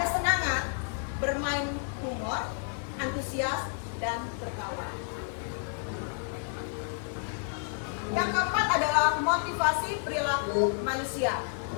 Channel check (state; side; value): silent; right; 57 dB below the other